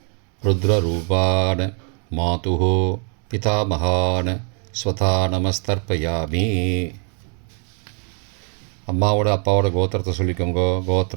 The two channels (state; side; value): quieter; left; 39.4 dB